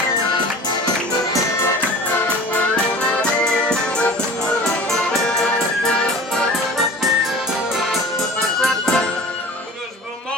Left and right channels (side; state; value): both; normal; correlation 0.40